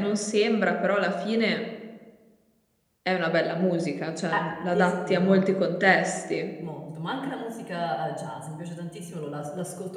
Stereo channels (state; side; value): identical; both; correlation 1.00